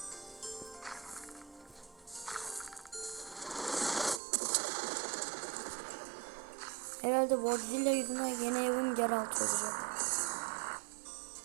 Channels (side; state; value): left; drops out; at 4.2 s